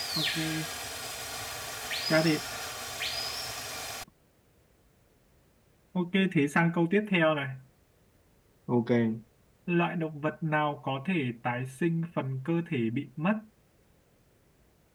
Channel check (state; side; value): identical; both; correlation 1.00